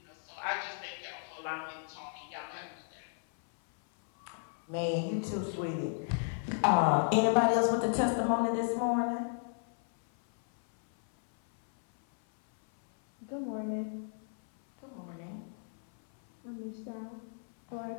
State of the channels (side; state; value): right; silent; 55 dB below the other